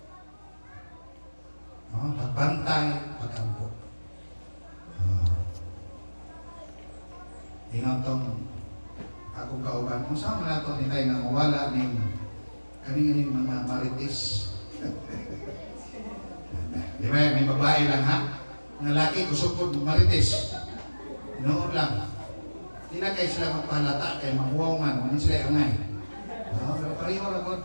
Pagbantay, pagampo. Ingon tong akong kauban. Kung saan mo na ito nitay nga mawala ng kaning mga marites. Di ba? May babae lang ha? Ng laki kusupod marites. Noon lang. Di na kayo sila magpahalata kay mahuwaw man. Ano sila angay? Pero pareho ragot.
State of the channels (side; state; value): both; inverted; correlation -1.00